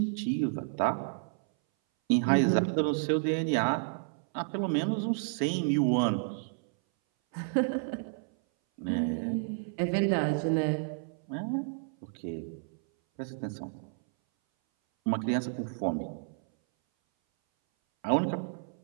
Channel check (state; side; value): silent; left; 57 dB below the other